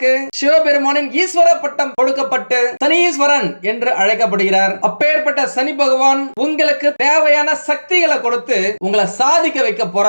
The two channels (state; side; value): inverted; both; correlation -1.00